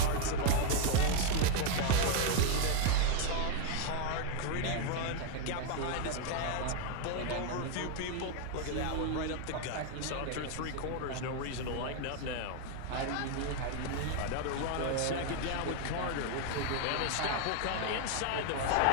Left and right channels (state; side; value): different; both; correlation 0.00